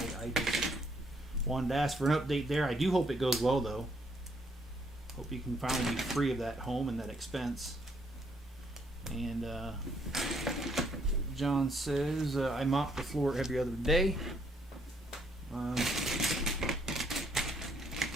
just wanted to ask for an update there. I do hope it goes well, though. Hope you can finally be free of that home and that expense. And John says I mop the floor every other day.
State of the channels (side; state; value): both; normal; correlation 0.70